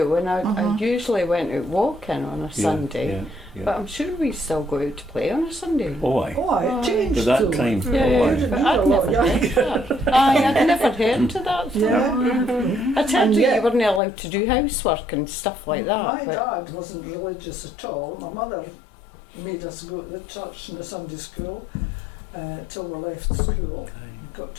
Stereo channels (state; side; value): drops out; right; at 14.0 s